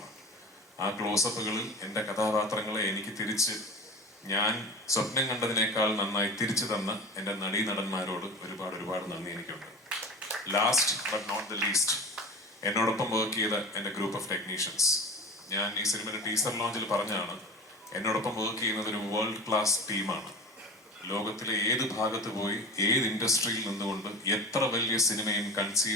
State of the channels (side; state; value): both; normal; correlation 0.33